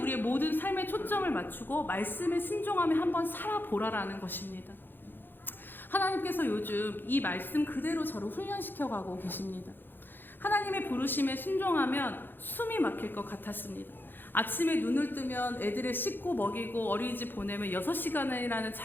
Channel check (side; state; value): right; late; 0.097 ms